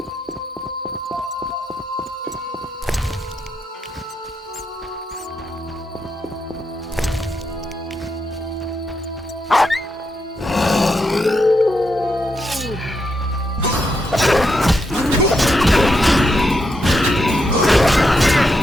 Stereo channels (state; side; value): normal; both; correlation 0.82